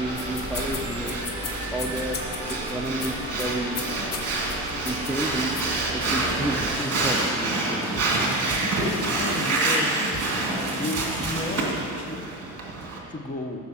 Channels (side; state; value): both; normal; correlation 0.22